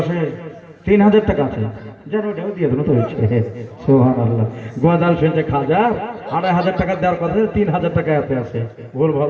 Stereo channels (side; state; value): both; identical; correlation 1.00